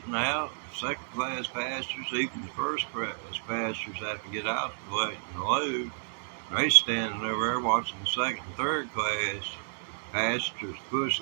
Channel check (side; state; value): left; silent; digital silence